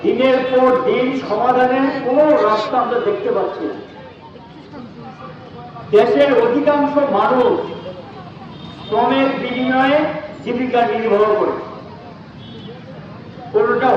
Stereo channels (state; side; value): identical; both; correlation 1.00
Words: দিনের পর দিন সমাধানের কোনো রাস্তা আমরা দেখতে পাচ্ছি না। দেশের অধিকাংশ মানুষ শ্রমের বিনিময়ে জীবিকা নির্বাহ করে। কোনটা